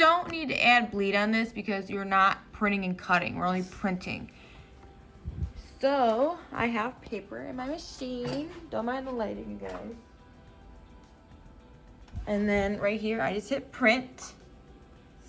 need to add bleed on this because you're not printing and cutting. We're only printing. So I have paper in my machine. Don't mind the lighting, you guys. And then right here, I just hit print.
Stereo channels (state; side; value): identical; both; correlation 1.00